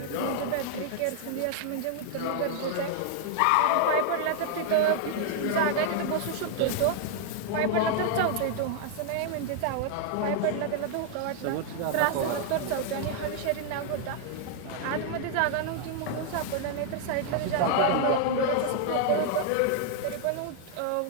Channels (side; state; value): both; different; correlation 0.00